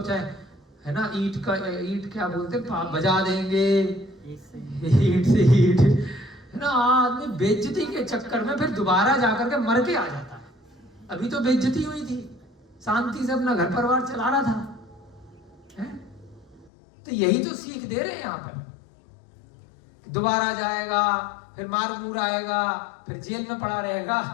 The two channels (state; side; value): drops out; right; at 16.7 s